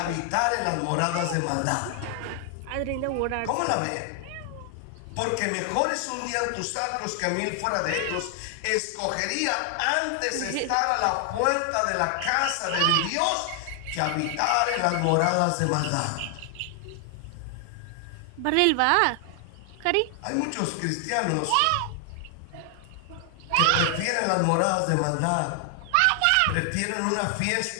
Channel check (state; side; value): different; both; correlation 0.00